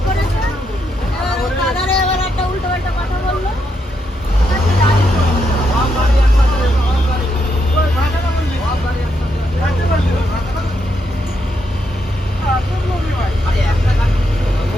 করেছে, এবার ওই দাদারে এবার একটা উল্টো পাল্টা কথা বললো।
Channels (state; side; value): normal; both; correlation 0.80